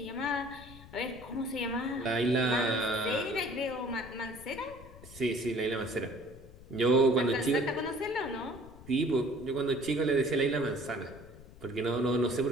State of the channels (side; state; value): left; noise; rumble, 19 dB below the sound